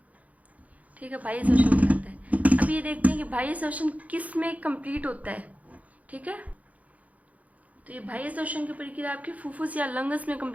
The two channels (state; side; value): late; left; 0.071 ms